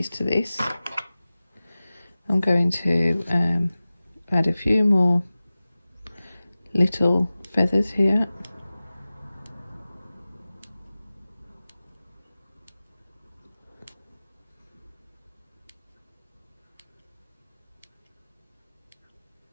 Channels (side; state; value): both; inverted; correlation -0.97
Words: to this, I'm going to add a few more little feathers here.